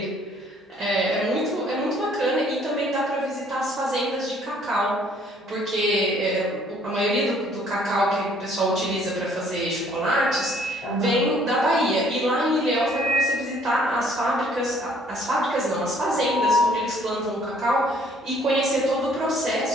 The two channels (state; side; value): normal; both; correlation 0.60